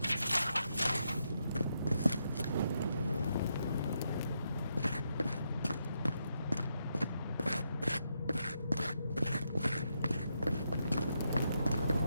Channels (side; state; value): both; inverted; correlation -0.81